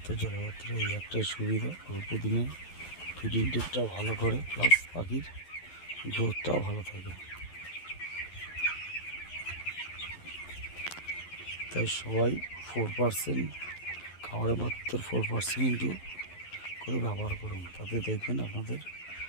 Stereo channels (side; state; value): right; late; 11 ms